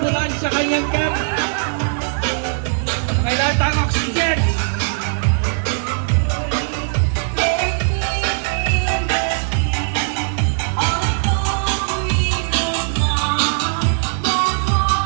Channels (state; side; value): silent; left; digital silence